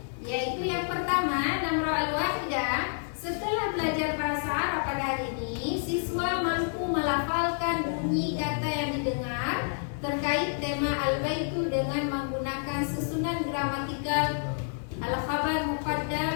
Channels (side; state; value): right; silent; 59 dB below the other